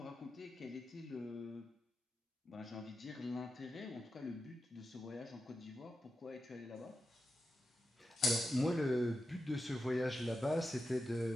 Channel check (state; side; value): normal; both; correlation 0.90